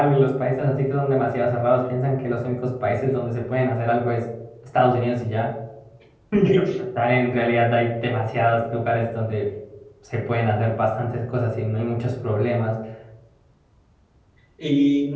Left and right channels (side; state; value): both; identical; correlation 1.00